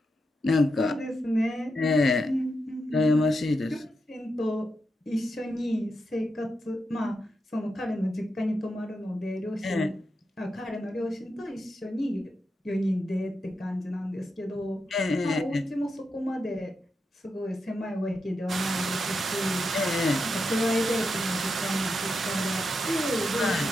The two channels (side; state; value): both; normal; correlation 0.86